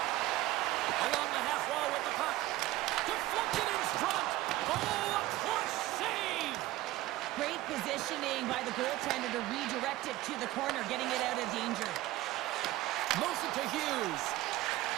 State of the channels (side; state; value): left; quieter; 16.8 dB